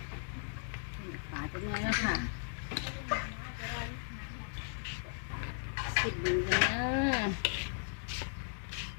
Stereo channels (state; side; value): silent; right; digital silence